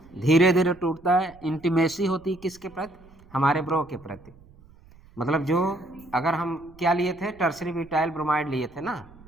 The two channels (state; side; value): noise; right; rumble, 25 dB below the sound